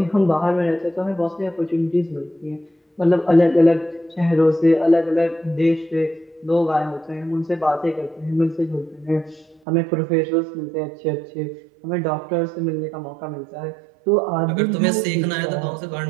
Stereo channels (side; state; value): left; drops out; at 9.6 s